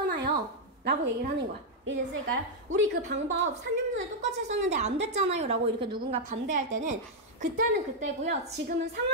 라고 얘기를 하는 거야. 이해됐을까요? 우리 그 방법 3년 전에 똑같이 했었는데 안 됐잖아요 라고 이렇게 누군가 반대할 때는 그때는 그때고요, 지금은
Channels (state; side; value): normal; both; correlation -0.02